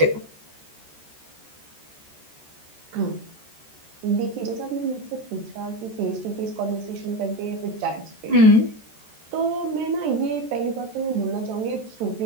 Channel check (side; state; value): left; late; 14 ms